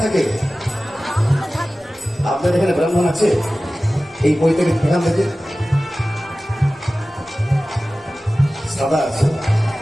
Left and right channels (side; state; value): both; normal; correlation 0.96